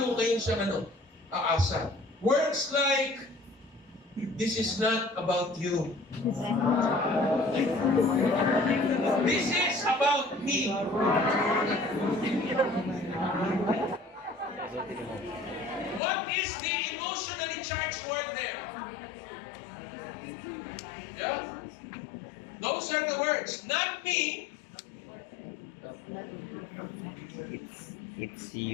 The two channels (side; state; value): right; drops out; at 16.0 s